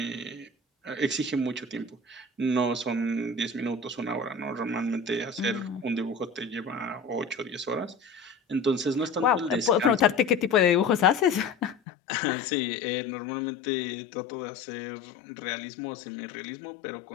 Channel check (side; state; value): right; drops out; at 11.8 s